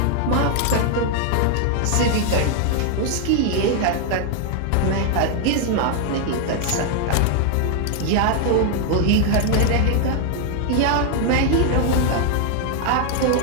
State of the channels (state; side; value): different; both; correlation 0.00